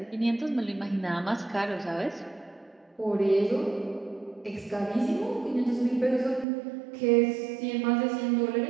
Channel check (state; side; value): drops out; left; at 6.5 s